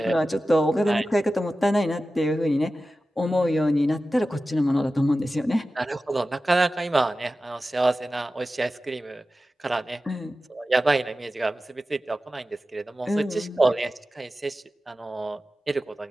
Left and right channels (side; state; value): both; normal; correlation 0.94